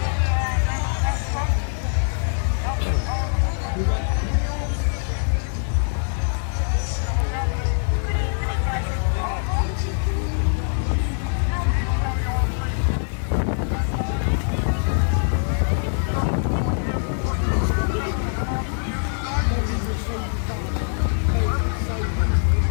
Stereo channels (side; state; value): right; silent; 56 dB below the other